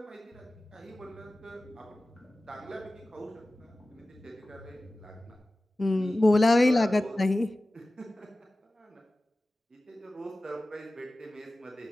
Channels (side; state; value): both; normal; correlation 0.96